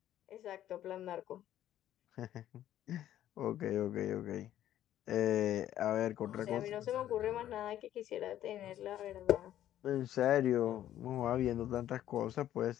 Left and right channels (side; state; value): right; quieter; 12.1 dB